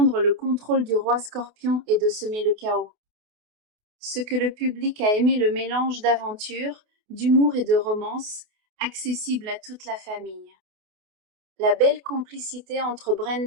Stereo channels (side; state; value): left; late; 28 ms